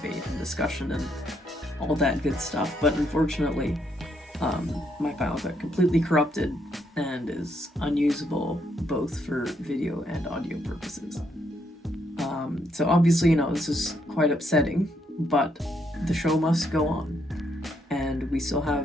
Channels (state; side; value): normal; both; correlation 0.75